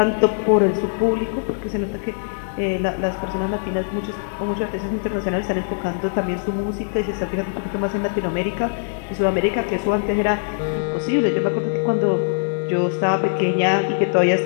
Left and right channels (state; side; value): silent; right; digital silence